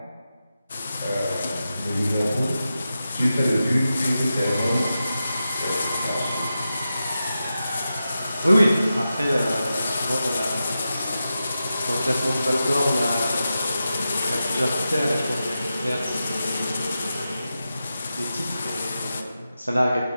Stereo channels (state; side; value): inverted; both; correlation -0.91